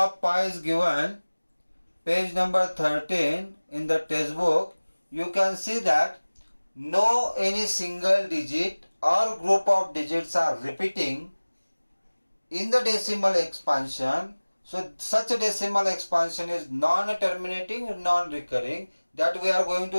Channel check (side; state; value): both; inverted; correlation -1.00